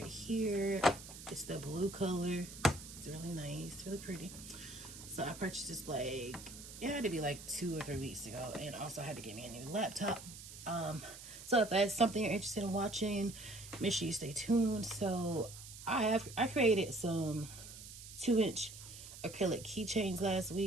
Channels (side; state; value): right; noise; hiss, 14 dB below the sound